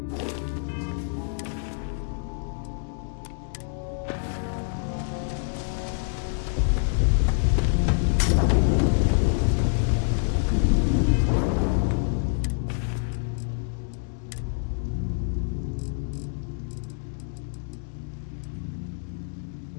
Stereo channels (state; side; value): silent; right; 60 dB below the other